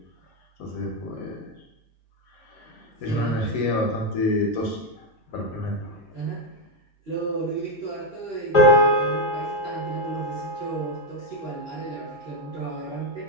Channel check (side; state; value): both; normal; correlation 0.05